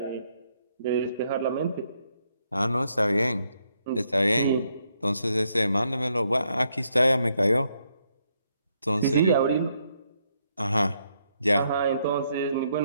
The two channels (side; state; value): both; inverted; correlation -0.76